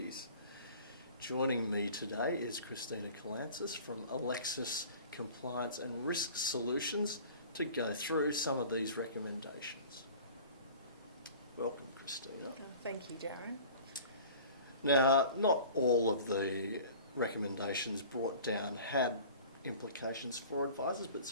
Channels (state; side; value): inverted; both; correlation -0.44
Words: Joining me today is Christina Kalantzis from Alexis Compliance and Risk Solutions to go through some of these recommendations. Welcome, Christina. Thank you, Darren. Now, not all of the recommendations brought down had implications for advisors, but